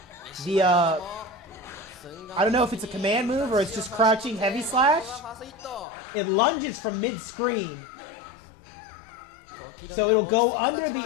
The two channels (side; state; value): right; drops out; at 5.9 s